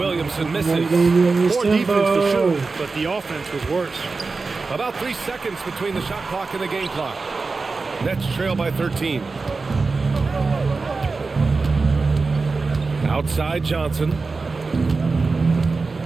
misses. Poor defense for sure, but the offense was worse. About 3 seconds between the shot clock and the game clock. Nets trail by 13. Outside Johnson.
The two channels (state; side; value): quieter; left; 4.1 dB